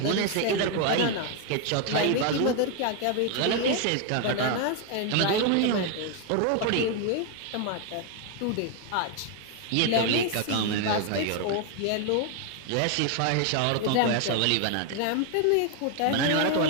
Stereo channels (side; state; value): both; different; correlation 0.01